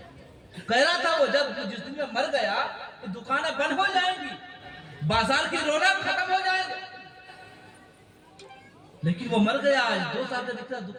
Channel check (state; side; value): identical; both; correlation 1.00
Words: کہہ رہا تھا وہ جس دن میں مر گیا یہ دکانیں بند ہو جائیں گی، بازار کی رونق ختم ہو جائے گی، لیکن وہ مر گیا۔ آج 2 سال کا